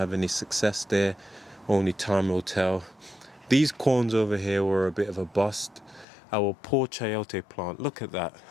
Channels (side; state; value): right; drops out; at 6.1 s